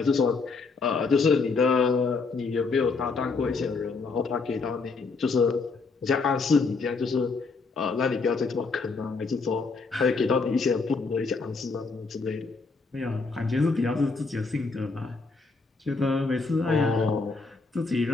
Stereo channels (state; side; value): quieter; right; 4.3 dB